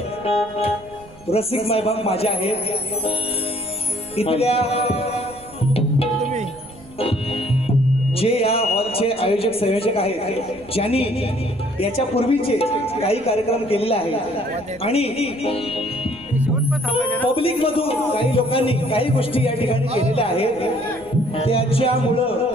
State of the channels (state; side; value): noise; right; rumble, 23 dB below the sound